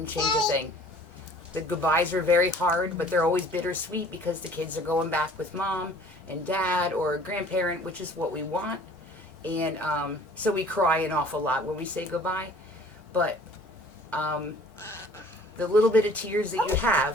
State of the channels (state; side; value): normal; both; correlation 0.51